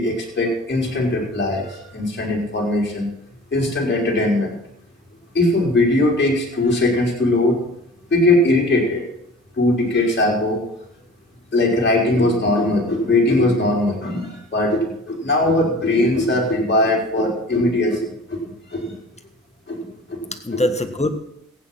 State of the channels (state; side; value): normal; both; correlation 0.43